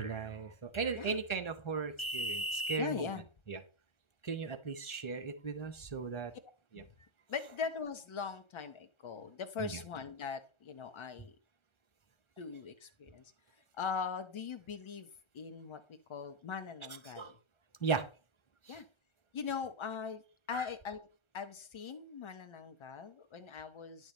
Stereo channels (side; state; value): right; late; 1.3 ms